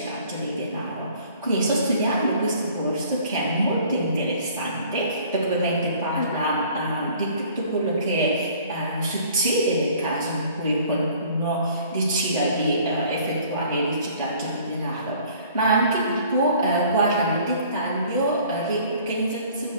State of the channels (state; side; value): inverted; both; correlation -0.53